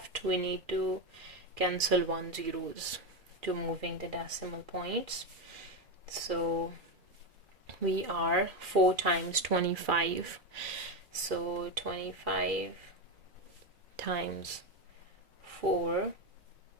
we need to cancel 1 zeros to moving the decimal points. So we are 4 times 25. So 25 times 4.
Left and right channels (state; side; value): late; left; 2.4 ms